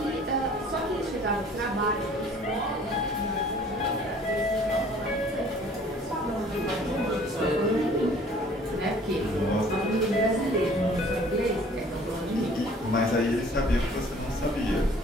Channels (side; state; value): both; normal; correlation 0.53